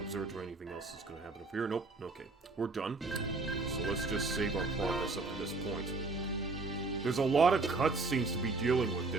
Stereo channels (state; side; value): quieter; left; 3.6 dB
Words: observatory. Anything else is going to happen up here? Nope. Okay, we're done. So let's just save our progress up to this point. There's a lot of cutscenes to be dealing with